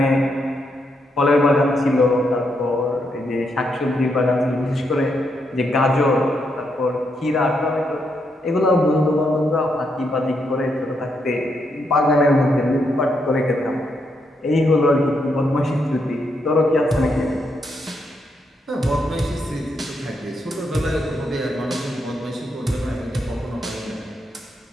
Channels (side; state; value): both; normal; correlation 0.79